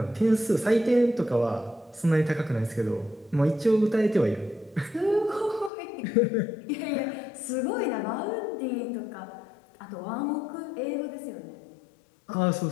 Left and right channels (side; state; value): right; drops out; at 5.7 s